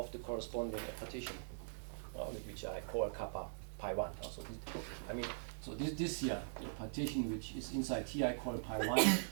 the corresponding partition, which I call kappa pi 1. So this here, the partition which is inside here I call pi 1,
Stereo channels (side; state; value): left; silent; digital silence